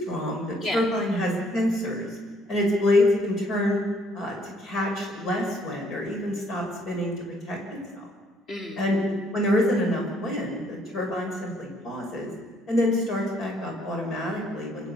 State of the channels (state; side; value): normal; both; correlation 0.66